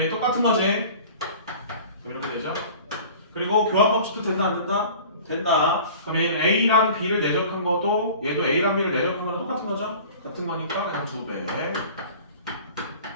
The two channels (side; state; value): both; inverted; correlation -0.43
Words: 얘 똑같은 거지? 그럼 이렇게 되죠? 그리고 교환 법칙도 된다 안 된다? 된다. 그럼 얘는 A랑 B를 내적한 것도 얘도 A랑 B를 내적한 거랑 똑같은 거죠? 같은 거니까 그냥 2배